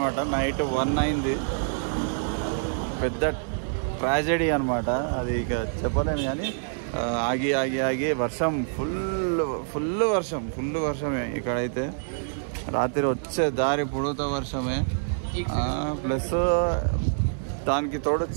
నైట్ 1 అయింది. పెద్ద ట్రాజెడీ అనమాట అది, ఇక చెప్పలేను కానీ ఆగి ఆగి ఆగి వర్షం ఫుల్ వర్షమే ఇక్కడైతే. రాత్రి వచ్చే దారి పొడుగుతా వర్షమే, ప్లస్ దానికి తోడు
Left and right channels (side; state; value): left; silent; digital silence